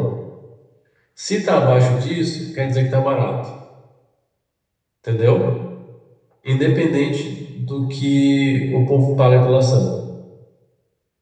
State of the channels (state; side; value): identical; both; correlation 1.00